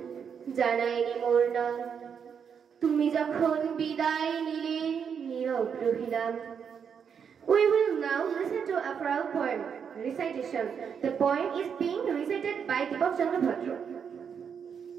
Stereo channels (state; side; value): quieter; left; 7.1 dB